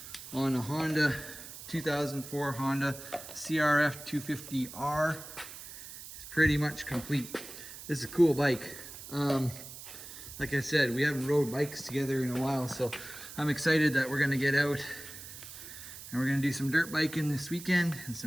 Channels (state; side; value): noise; right; hiss, 13 dB below the sound